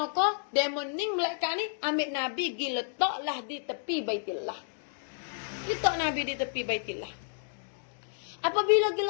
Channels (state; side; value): silent; right; digital silence